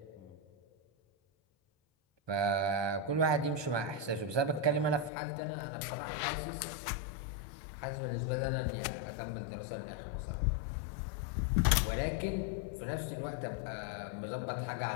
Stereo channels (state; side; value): drops out; right; at 5.1 s